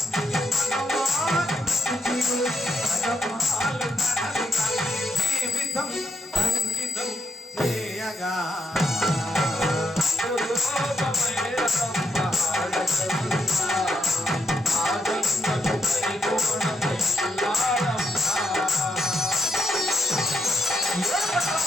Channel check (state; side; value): normal; both; correlation 0.80